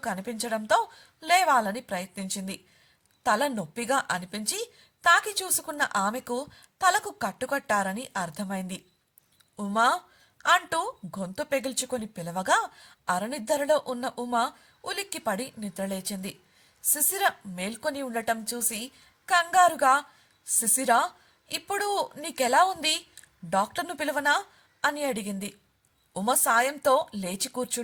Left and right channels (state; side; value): identical; both; correlation 1.00